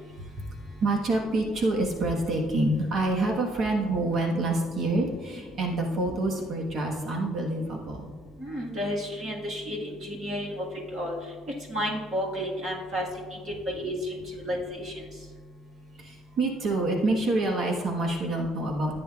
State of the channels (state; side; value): normal; both; correlation 0.65